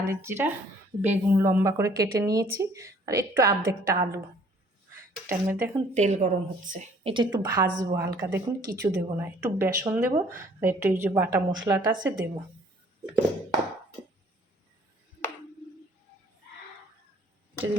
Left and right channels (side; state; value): both; normal; correlation 0.58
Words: জিরা, বেগুন লম্বা করে কেটে নিয়েছি, আর একটু আর্ধেকটা আলু। এটার মধ্যে এখন তেল গরম হচ্ছে, এটা একটু ভাজবো হালকা, দেখুন কিছু দেবো না, একটু বেসন দেবো আর একটু এই যে বাটা মশলাটা আছে দেবো। যদি